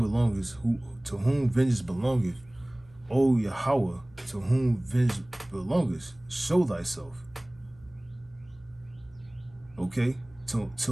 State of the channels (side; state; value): right; noise; hum, 26 dB below the sound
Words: vengeance belongeth. O Yahweh, to whom vengeance belongeth, show thyself. Okay?